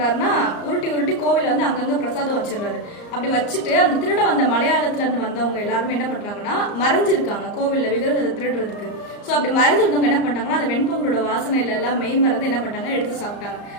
உருட்டி கோவில் அங்கங்க பிரசாதம் வச்சிடறாரு. அப்படி வச்சுட்டு அந்த திருட வந்த மலையாளத்துல இருந்து வந்தவங்க எல்லாருமே என்ன பண்றாங்கன்னா, மறைஞ்சிருக்காங்க கோவில்ல விக்கிரகத்தை திருடுறதுக்கு. ஸோ அப்படி மறைஞ்சிருந்தவங்க என்ன பண்றாங்கன்னா, அந்த வெண்பொங்கலோட வாசனையில எல்லாம் மெய் மறந்து என்ன பண்ணாங்க, எடுத்து சாப்பிட்டாங்க.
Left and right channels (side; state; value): right; late; 34 ms